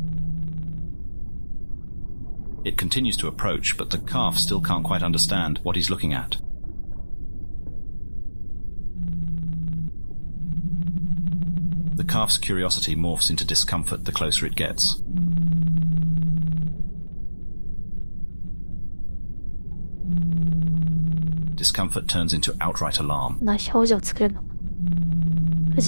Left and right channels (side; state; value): both; inverted; correlation -1.00